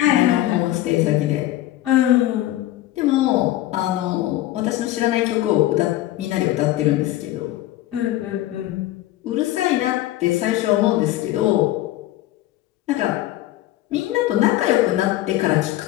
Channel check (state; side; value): quieter; right; 15.0 dB